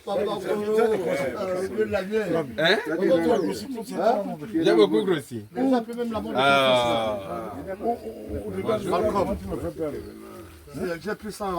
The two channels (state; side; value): identical; both; correlation 1.00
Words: J'ai beaucoup grossi. J'ai pris ça